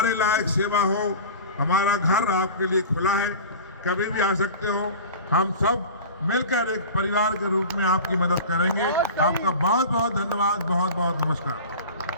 लायक सेवा हो, हमारा घर आपके लिए खुला है, कभी भी आ सकते हो। हम सब मिलकर एक परिवार के रूप में आपकी मदद करेंगे। आपका बहुत बहुत धन्यवाद, बहुत बहुत नमस्कार।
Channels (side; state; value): both; inverted; correlation -0.35